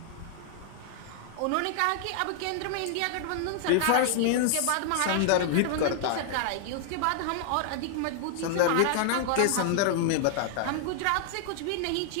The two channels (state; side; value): different; both; correlation 0.00